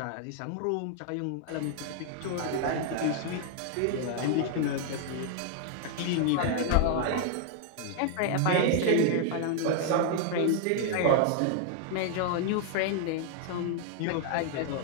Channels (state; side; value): different; both; correlation 0.00